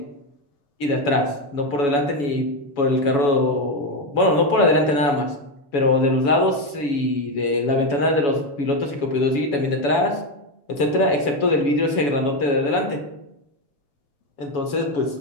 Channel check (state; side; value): late; right; 7.1 ms